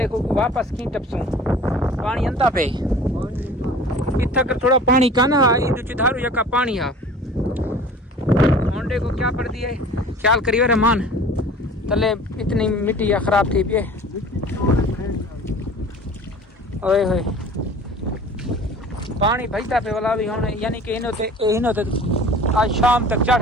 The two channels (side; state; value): both; normal; correlation 0.44